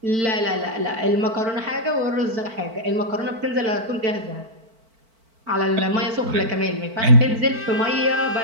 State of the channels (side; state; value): left; late; 4.5 ms